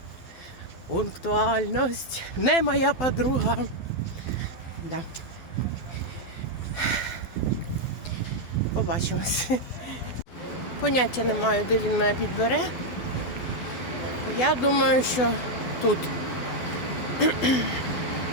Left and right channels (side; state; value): right; late; 12 ms